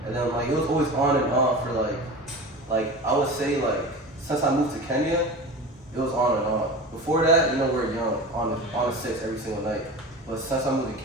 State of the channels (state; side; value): normal; both; correlation 0.31